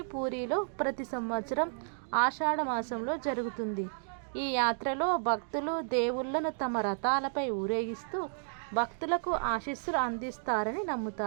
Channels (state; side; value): silent; left; digital silence